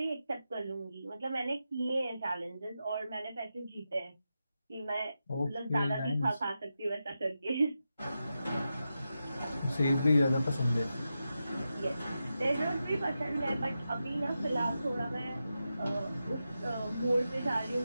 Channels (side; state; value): both; inverted; correlation -0.89